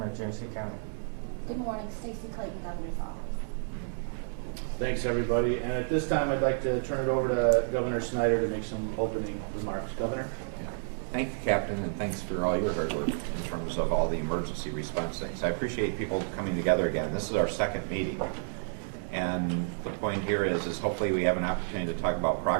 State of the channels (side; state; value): left; silent; digital silence